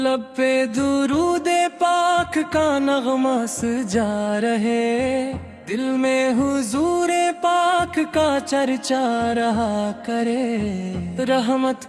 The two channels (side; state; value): both; identical; correlation 1.00